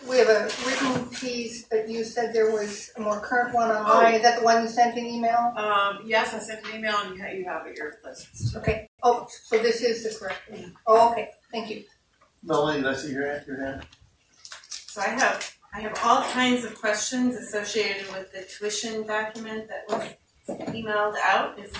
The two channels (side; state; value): both; identical; correlation 1.00